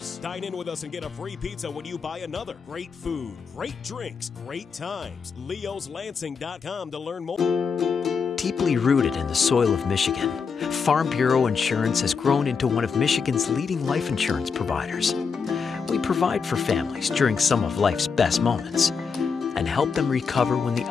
Dine in with us and get a free pizza when you buy another. Great food, great drinks, great times. Leo'sLansing.com to learn more. Deeply rooted in the soil of Michigan, Farm Bureau Insurance has grown into one of Michigan's leading life insurance providers. We provide for families during some of life's best moments and help them recover when the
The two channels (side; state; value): right; quieter; 5.6 dB